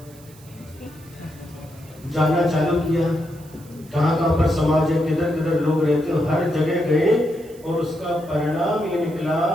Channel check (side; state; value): right; noise; hiss, 25 dB below the sound